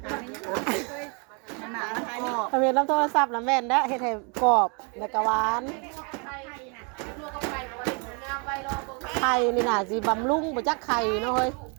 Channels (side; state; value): left; quieter; 35.1 dB